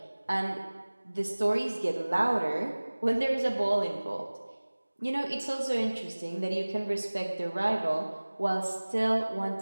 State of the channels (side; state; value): both; inverted; correlation -1.00